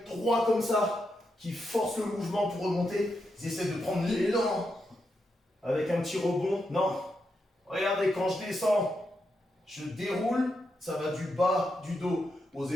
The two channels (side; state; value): both; normal; correlation 0.84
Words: droit comme ça, qui forcent le mouvement pour remonter. Ils essaient de prendre l'élan avec un petit rebond. Non. Regardez, quand je descends, je déroule. Ça va du bas du dos aux